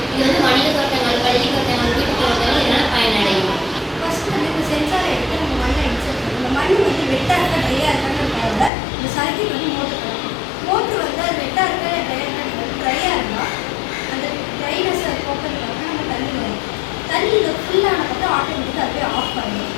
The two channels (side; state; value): right; drops out; at 8.7 s